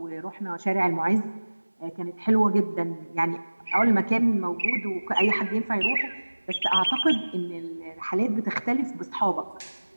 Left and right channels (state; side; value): inverted; both; correlation -1.00